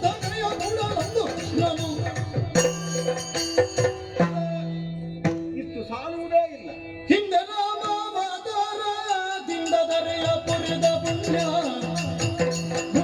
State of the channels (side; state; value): both; identical; correlation 1.00